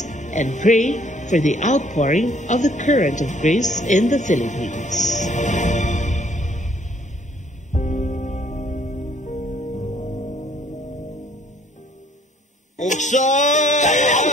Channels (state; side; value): normal; both; correlation 0.62